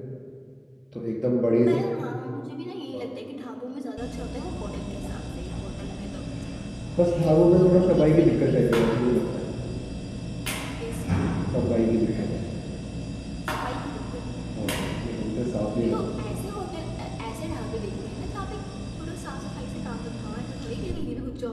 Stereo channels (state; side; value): identical; both; correlation 1.00